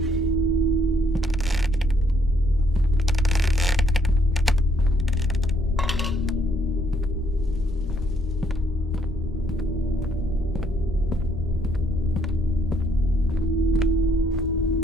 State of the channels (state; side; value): normal; both; correlation 0.68